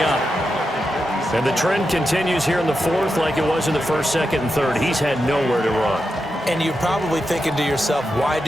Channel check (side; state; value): both; normal; correlation 0.88